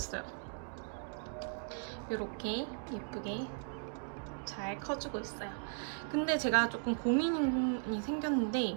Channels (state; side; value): silent; left; 53 dB below the other